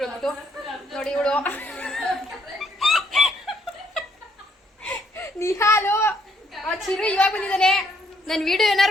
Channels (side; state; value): both; normal; correlation 0.70